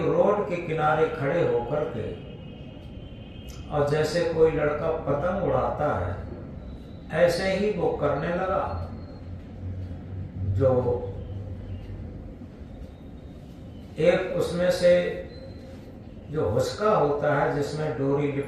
रोड के किनारे खड़े होकर के, और जैसे कोई लड़का पतंग उड़ाता है, ऐसे ही वो करने लगा। जो एक उसमें से जो हुस्का होता है, जिसमें डोरी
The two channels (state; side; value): identical; both; correlation 1.00